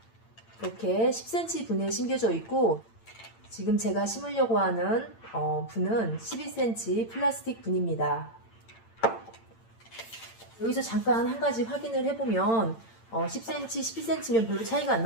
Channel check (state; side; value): late; right; 8.9 ms